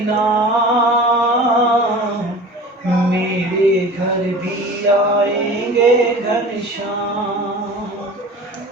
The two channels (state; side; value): normal; both; correlation 0.39